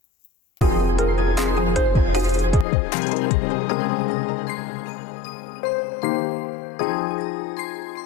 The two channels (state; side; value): drops out; right; at 2.7 s